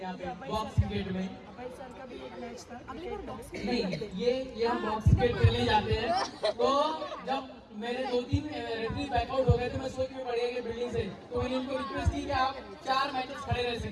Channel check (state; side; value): identical; both; correlation 1.00